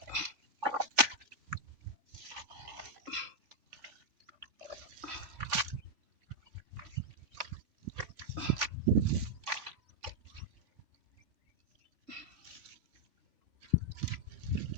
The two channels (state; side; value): late; left; 3.4 ms